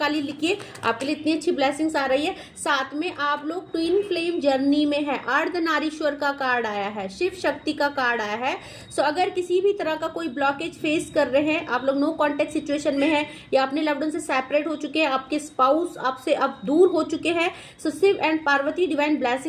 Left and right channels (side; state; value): both; identical; correlation 1.00